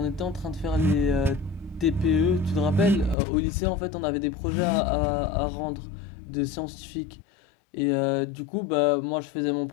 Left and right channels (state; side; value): drops out; right; at 3.2 s